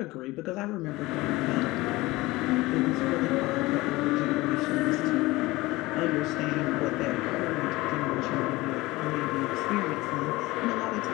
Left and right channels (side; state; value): right; quieter; 20.2 dB